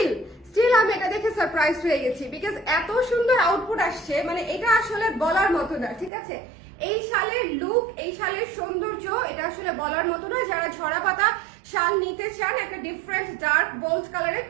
আমি এটা দেখে সারপ্রাইজ হয়ে গেছি বিকজ এত সুন্দর আউটপুট আসছে, মানে এটা আসলে বলার মতো না, ঠিক আছে। এই শালের লুক, এই শালের সৌন্দর্য এটা আসলে বলার মতো না। যারা ঝরা পাতা শাল নিতে চান একটা ডিফারেন্ট ডার্ক বোল্ড কালারে,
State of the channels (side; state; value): left; drops out; at 6.1 s